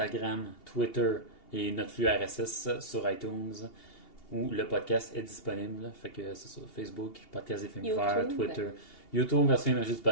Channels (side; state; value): right; late; 2.8 ms